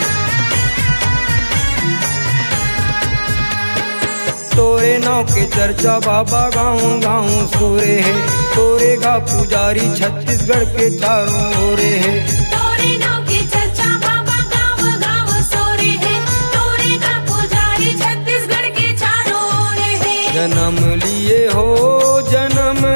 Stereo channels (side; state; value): both; inverted; correlation -1.00